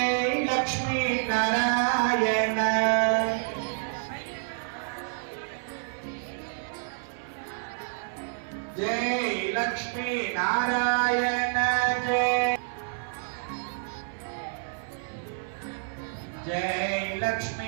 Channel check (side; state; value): left; silent; 59 dB below the other